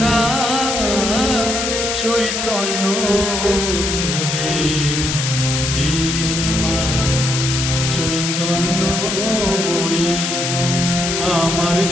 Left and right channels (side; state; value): left; noise; hiss, 2 dB below the sound